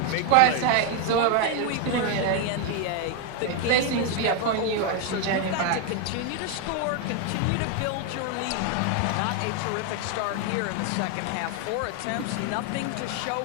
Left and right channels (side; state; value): both; different; correlation 0.01